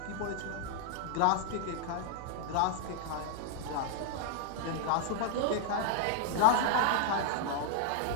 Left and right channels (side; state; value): both; different; correlation -0.01